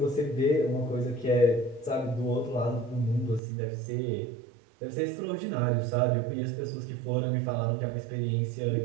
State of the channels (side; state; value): left; drops out; at 3.4 s